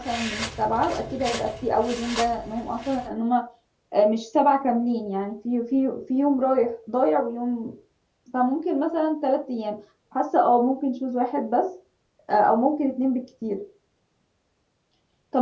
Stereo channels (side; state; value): both; identical; correlation 1.00